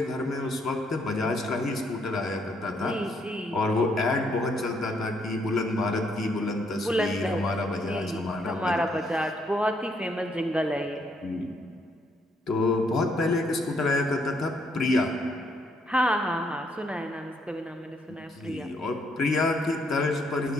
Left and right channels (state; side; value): normal; both; correlation 0.71